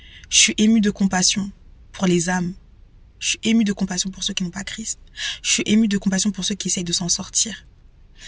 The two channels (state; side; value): identical; both; correlation 1.00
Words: Je suis ému de compassion pour les âmes. Je suis ému de compassion pour ceux qui n'ont pas Christ. Je suis ému de compassion pour ceux qui essayent de s'en sortir.